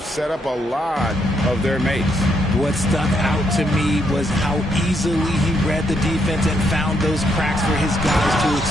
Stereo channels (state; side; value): normal; both; correlation 0.76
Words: set up a lot of their mates. What stuck out to me was how easily he read the defense and found those cracks for his guys to